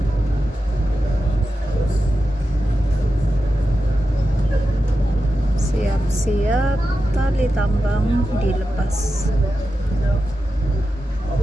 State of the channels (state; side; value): normal; both; correlation 0.91